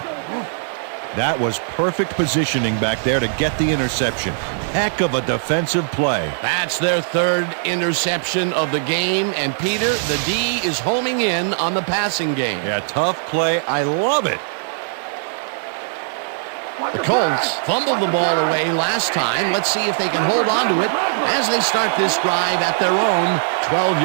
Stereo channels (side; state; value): left; silent; digital silence